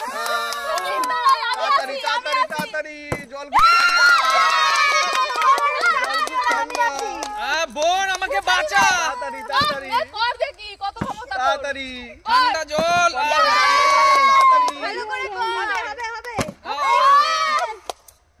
তাড়াতাড়ি তাড়াতাড়ি তাড়াতাড়ি জল। বোন আমাকে বাঁচা। তাড়াতাড়ি তাড়াতাড়ি কর দেখি কত ক্ষমতা তোর। তাড়াতাড়ি ঠান্ডা জল। ভালো করে কর। হবে।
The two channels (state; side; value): identical; both; correlation 1.00